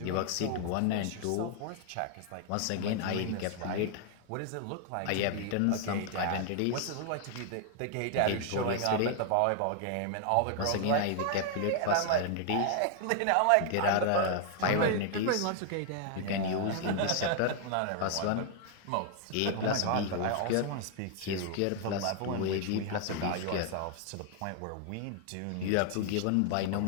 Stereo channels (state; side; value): different; both; correlation 0.00